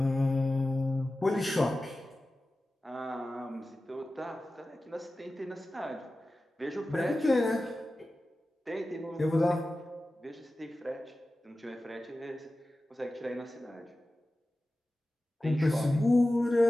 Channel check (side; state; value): both; normal; correlation 0.95